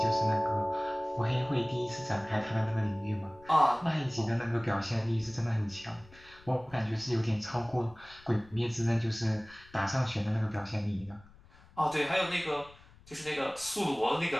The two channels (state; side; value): noise; left; rumble, 24 dB below the sound